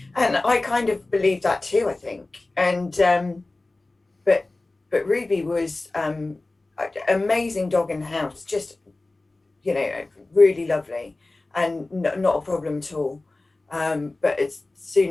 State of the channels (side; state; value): right; quieter; 3.1 dB